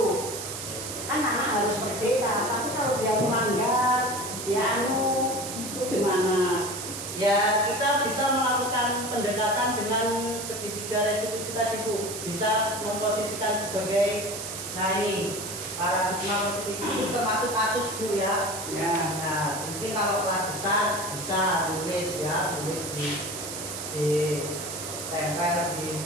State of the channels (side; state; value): right; noise; hiss, 7 dB below the sound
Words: Kan anak harus berbeda, tapi kalau dia melanggar, dia itu gimana? ya kita bisa melakukan pendekatan dengan segitiga restitusi tadi, Bu. Bisa memposisikan sebagai, nah ini paradigma positif itu termasuk kasus, Bu, ya. Ya. Nah, mungkin kalau kelas besar bisa tulis ya, tulis di tempel di